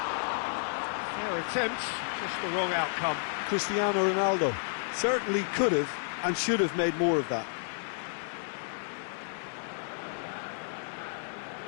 Fair attempt, just the wrong outcome. Cristiano Ronaldo certainly could have and should have made more of that.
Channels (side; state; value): right; silent; digital silence